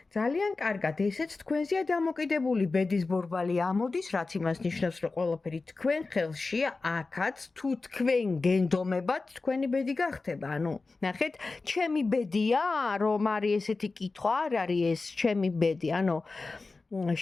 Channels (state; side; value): quieter; right; 3.8 dB